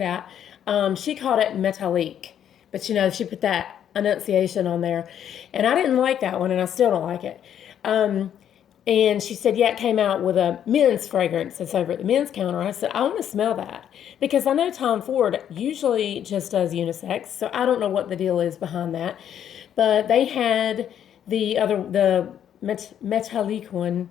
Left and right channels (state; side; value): quieter; right; 9.7 dB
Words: She called it Metallique, but she put that enunciation on there. And I didn't like that one, and I still don't like it. And she said, yeah, it came out with a men's fragrance that's over at the men's counter. I said, I want to smell that. Because I know Tom Ford usually just does unisex, so I don't know what the deal is behind that. But they had the Metallique one